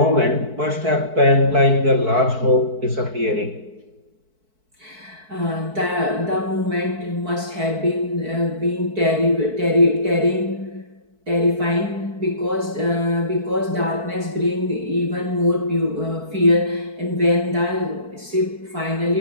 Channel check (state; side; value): late; left; 4.6 ms